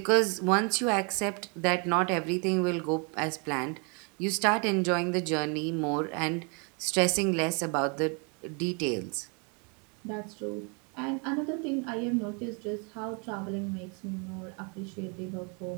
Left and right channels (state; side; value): quieter; left; 35.0 dB